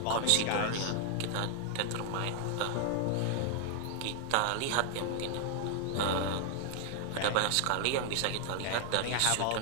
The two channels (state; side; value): different; both; correlation 0.00